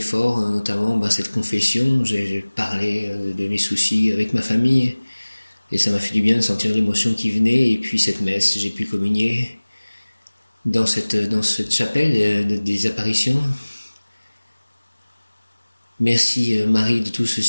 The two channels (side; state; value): both; inverted; correlation -1.00